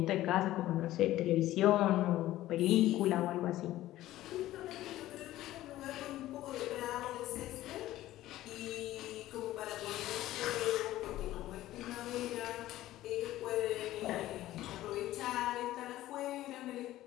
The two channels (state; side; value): quieter; right; 15.0 dB